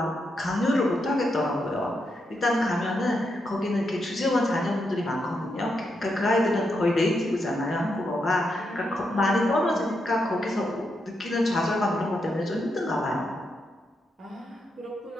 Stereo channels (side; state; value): both; normal; correlation 0.82